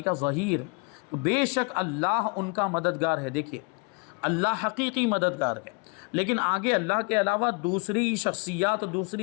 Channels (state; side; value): quieter; right; 33.2 dB